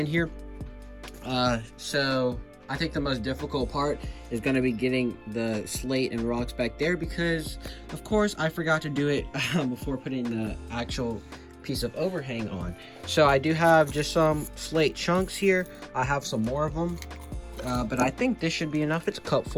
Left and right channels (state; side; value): identical; both; correlation 1.00